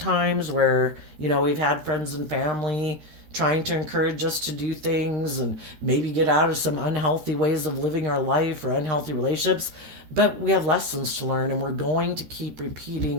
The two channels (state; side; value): late; left; 13 ms